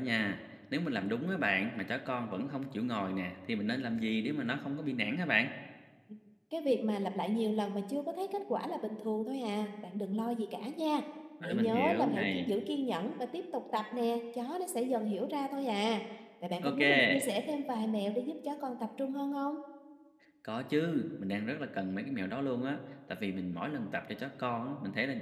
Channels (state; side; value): identical; both; correlation 1.00